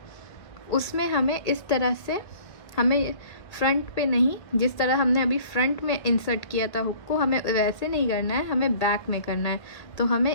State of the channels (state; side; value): late; right; 1.7 ms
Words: उसमें हमें इस तरह से, हमें फ्रंट पे नहीं, जिस तरह हमने अभी फ्रंट में इंसर्ट किया था हुक को, हमें वैसे नहीं करना है, हमें बैक में करना है। तो